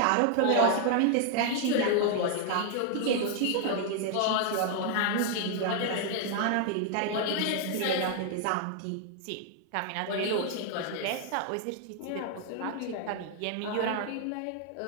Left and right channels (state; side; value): different; both; correlation 0.00